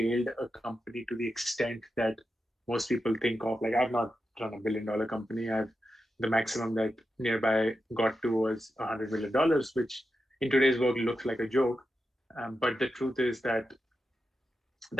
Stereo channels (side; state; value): both; normal; correlation 0.89